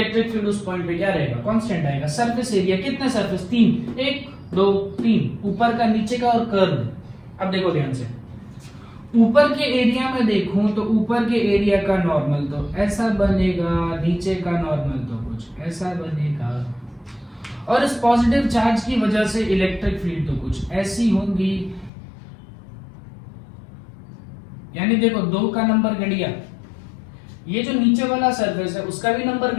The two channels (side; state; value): right; drops out; at 21.9 s